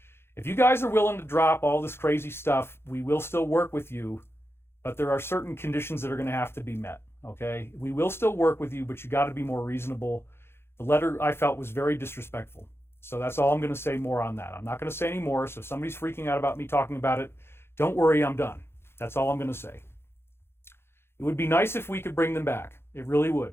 If you guys are willing to drop all this crazy stuff, we will still work with you, but there are certain conditions that are going to have to be met. Okay, we will still work with you, but you got to be more reasonable. The letter I felt was very disrespectful. So that's all I'm going to say more on that. I'm not going to say any more. So if somebody's freaking out about me talking about it, don't worry, I'm done. That's all I'm going to say. It would be nice if we could bring them back. It really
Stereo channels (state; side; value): late; right; 0.12 ms